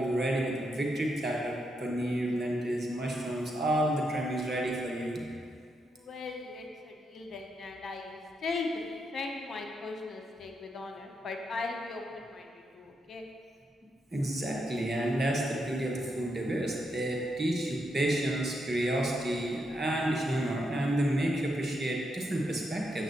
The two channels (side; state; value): both; normal; correlation 0.81